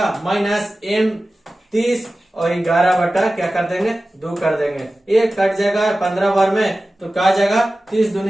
माइनस m 30 और 11 क्या कर देंगे, 2 कर देंगे। ये कट जाएगा 15 बार में, तो क्या आ जाएगा 30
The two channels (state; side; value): normal; both; correlation 0.96